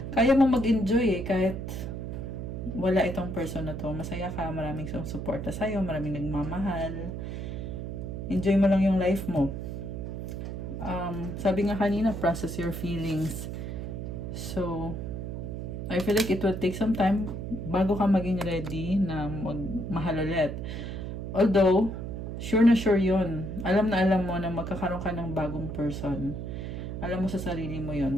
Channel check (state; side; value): noise; right; hum, 6 dB below the sound